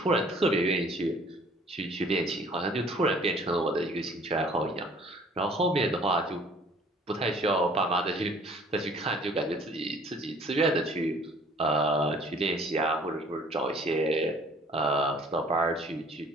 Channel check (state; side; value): normal; both; correlation 0.54